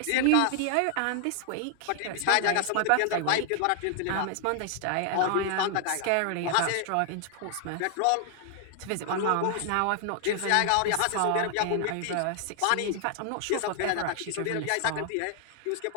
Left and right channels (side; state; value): both; different; correlation 0.00